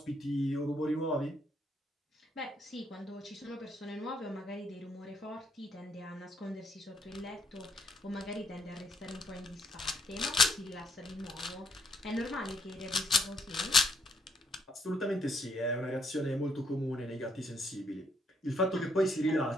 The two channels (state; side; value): normal; both; correlation 0.71